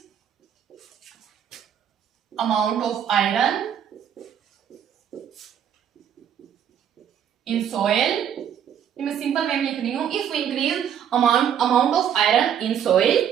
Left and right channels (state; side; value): quieter; left; 9.0 dB